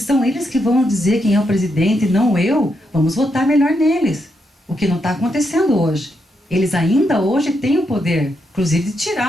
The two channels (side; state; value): both; normal; correlation 0.81